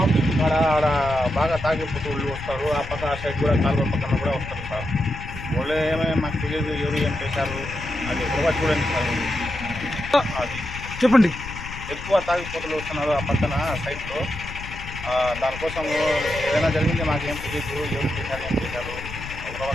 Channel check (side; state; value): left; noise; rumble, 11 dB below the sound